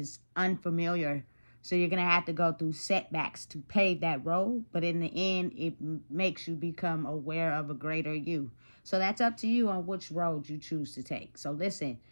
unfamiliar. So you're going to have to go through setbacks to pave that road. But in the end, it makes you become aware of a greater you. So that's up to you on which road you choose to take. So listen,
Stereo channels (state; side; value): inverted; both; correlation -1.00